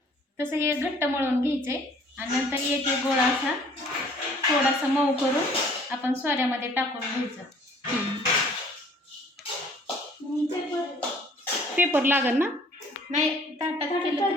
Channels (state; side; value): normal; both; correlation 0.56